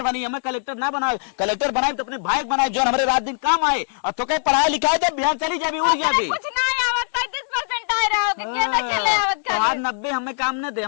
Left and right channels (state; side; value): silent; right; digital silence